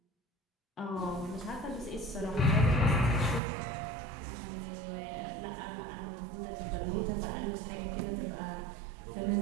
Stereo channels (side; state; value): left; drops out; at 3.4 s